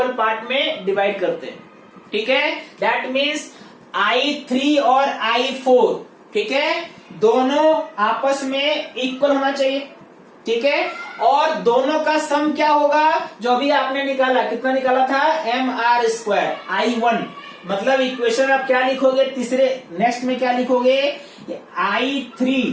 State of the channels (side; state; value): both; identical; correlation 1.00